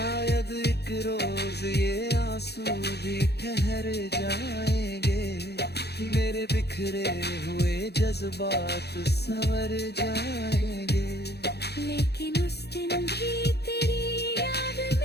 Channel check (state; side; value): late; right; 0.48 ms